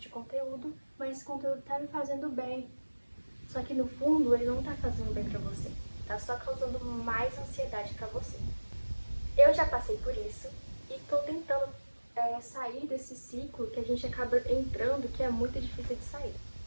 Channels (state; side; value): inverted; both; correlation -1.00